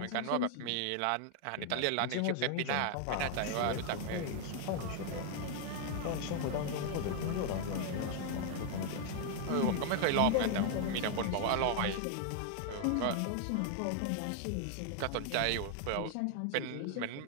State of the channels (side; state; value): both; different; correlation 0.00